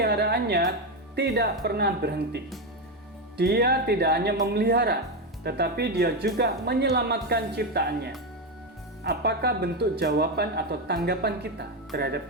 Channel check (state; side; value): normal; both; correlation 0.10